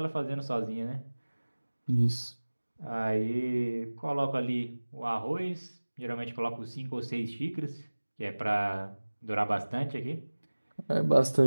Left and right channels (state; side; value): inverted; both; correlation -1.00